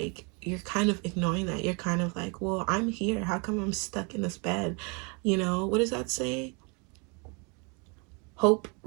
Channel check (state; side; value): quieter; left; 32.7 dB